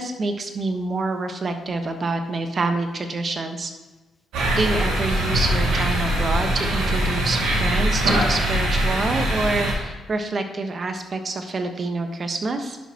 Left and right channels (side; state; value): both; normal; correlation 0.78